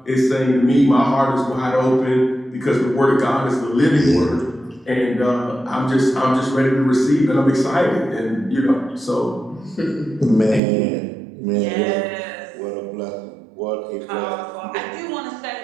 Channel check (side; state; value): left; drops out; at 10.6 s